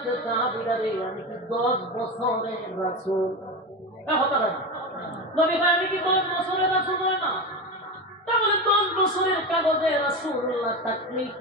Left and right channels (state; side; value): normal; both; correlation 0.21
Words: সাহাবীরা রে, আমি কি 10 বছরের রাসূল? হতে পারে না। নবী ভাই আমি কি 10 বছরের রাসূল নয় না? তাহলে 10 বছরের কাগজে রাসূলুল্লাহ থাকলে